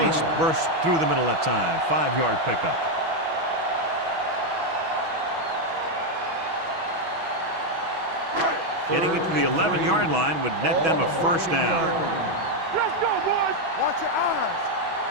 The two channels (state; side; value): late; left; 6.2 ms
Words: burst through the middle that time. 5-yard pickup. Getting it to the 11-yard line would net them a first down. Let's go, boys. Watch your eyes.